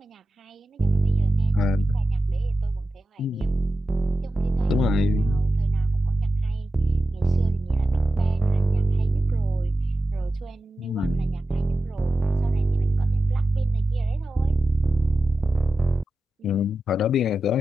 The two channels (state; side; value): normal; both; correlation 0.92